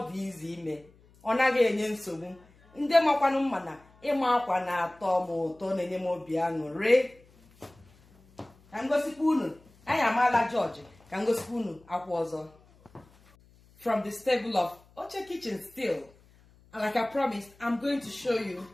dị izi ime, ọ naghị enye nsogbu. Ndị makwanụ mma na ịma akwa na-atọ m ụtọ, na-enye m obi aṅụrị. Ka ngosikwa unu, anyị amaala George, ka ngosikwa unu akwa ọzọ. From the stable of Oche Kitchen still. And like I promised, I'm going to show you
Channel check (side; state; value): left; noise; hum, 28 dB below the sound